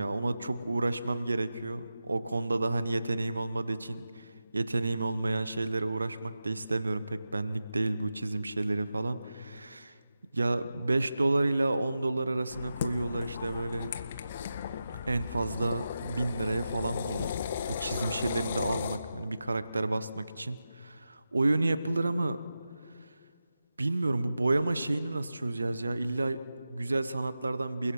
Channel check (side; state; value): both; inverted; correlation -0.91